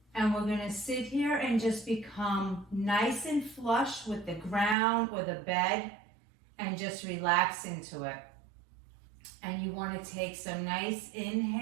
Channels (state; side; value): drops out; left; at 4.8 s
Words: And we're gonna sit here and just become nice and flush with the ground or the bed and just relax into it. And you wanna take some nice